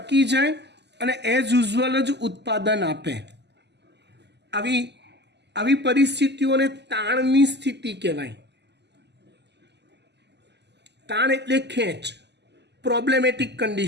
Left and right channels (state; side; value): late; left; 0.50 ms